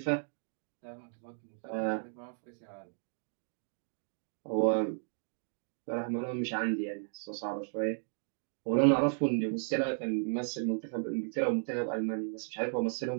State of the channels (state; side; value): silent; left; digital silence